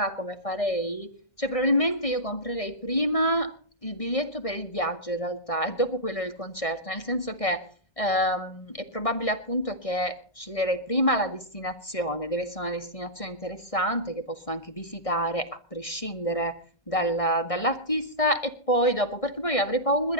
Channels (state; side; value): late; right; 1.6 ms